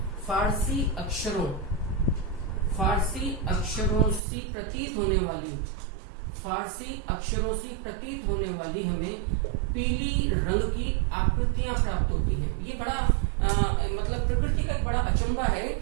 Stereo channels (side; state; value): left; drops out; at 4.2 s